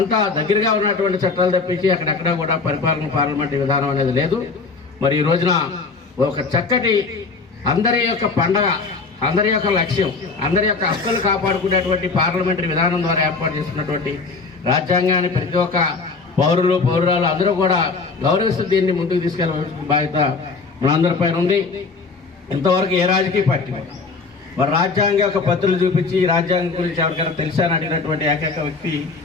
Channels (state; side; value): quieter; right; 4.3 dB